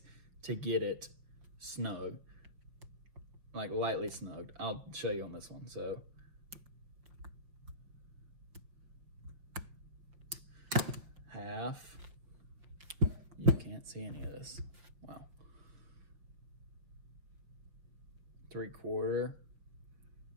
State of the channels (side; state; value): left; late; 5.9 ms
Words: to get it snug, like lightly snugged. I'll show you on this one. So half, you can't see any of this. Wow. 3/4,